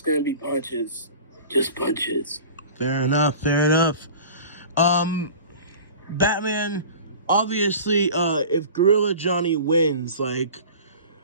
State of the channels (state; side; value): inverted; both; correlation -0.40